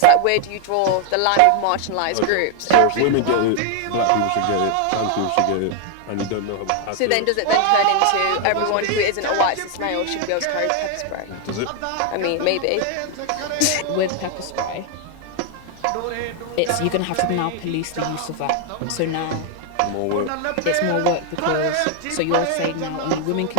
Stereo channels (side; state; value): both; different; correlation 0.00